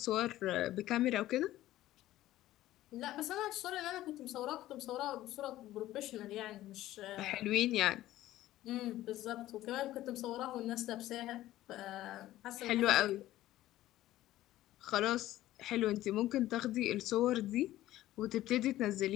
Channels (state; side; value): quieter; right; 14.9 dB